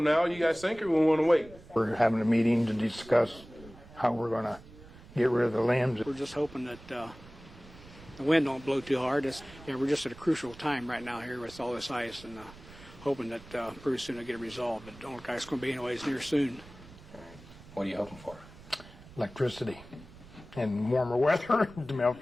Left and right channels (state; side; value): noise; right; rumble, 20 dB below the sound